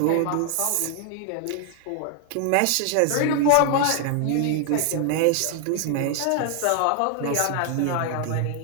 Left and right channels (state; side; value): different; both; correlation 0.00